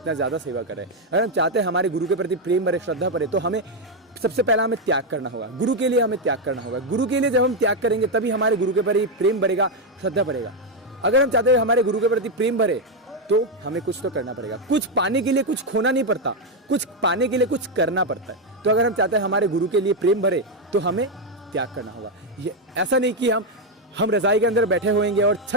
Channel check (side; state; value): both; normal; correlation 0.04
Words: ज़्यादा सेवा करे। अगर हम चाहते हैं हमारे गुरु के प्रति प्रेम भरे, श्रद्धा भरे, तो हमें सबसे पहला हमें त्याग करना होगा। गुरु के लिए हमें त्याग करना होगा। गुरु के लिए जब हम त्याग करेंगे तभी हमारे गुरु के प्रति प्रेम भरेगा, श्रद्धा भरेगा। अगर हम चाहते हैं हमारे गुरु के प्रति प्रेम भरे तो हमें कुछ तो करना पड़ेगा। कुछ पाने के लिए कुछ खोना नहीं पड़ता, कुछ पाने के लिए कुछ करना पड़ता है। तो अगर हम चाहते हैं हमारे गुरु के लिए प्रेम भरे तो हमें त्याग करना होगा। ये ऐसा नहीं कि हम रजाई के अंदर बैठे होंगे और